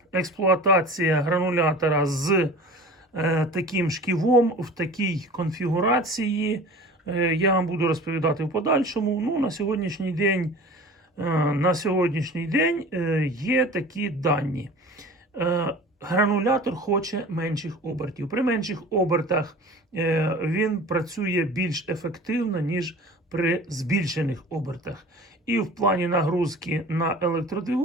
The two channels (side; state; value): both; normal; correlation 0.40